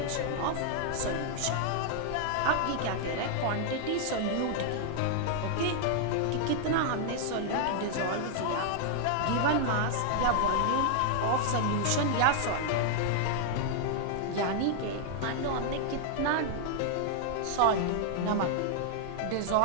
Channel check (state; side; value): different; both; correlation 0.00